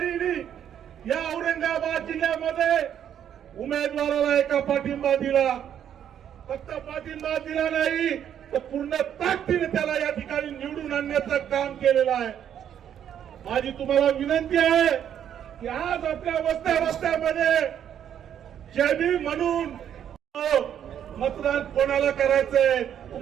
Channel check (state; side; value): quieter; left; 9.5 dB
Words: या औरंगाबाद जिल्ह्यामध्ये उमेदवाराला एका पाठिंबा दिला। फक्त पाठिंबा दिला नाही तर पूर्ण ताकदीने त्याला या ठिकाणी निवडून आणण्याचं काम केलेलं आहे। माझी तुम्हाला विनंती आहे की आज आपल्या वस्त्यामध्ये जय भीम म्हणून मतदान कोणाला करायचंय?